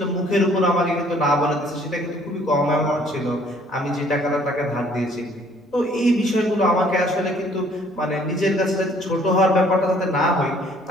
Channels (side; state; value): both; normal; correlation 0.59